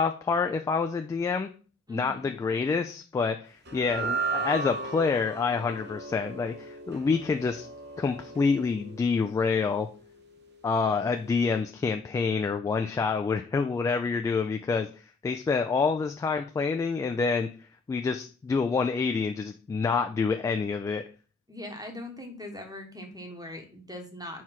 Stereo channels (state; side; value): quieter; right; 4.1 dB